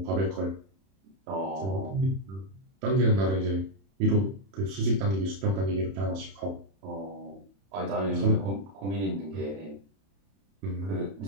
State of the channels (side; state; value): left; late; 31 ms